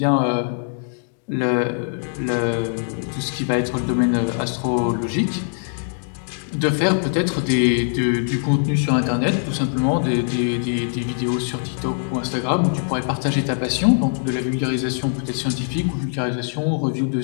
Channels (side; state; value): right; silent; 64 dB below the other